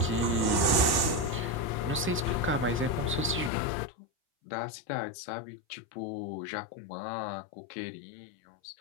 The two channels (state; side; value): drops out; right; at 3.5 s